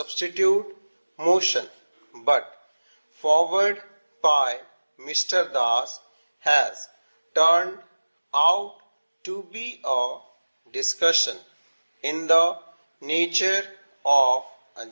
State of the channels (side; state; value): both; inverted; correlation -1.00